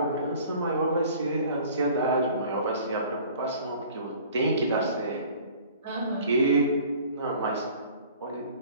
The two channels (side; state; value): both; inverted; correlation -0.48